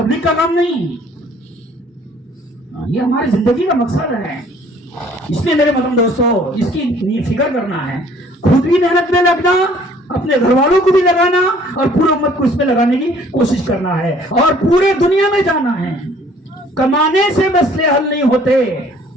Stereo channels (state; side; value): normal; both; correlation 0.57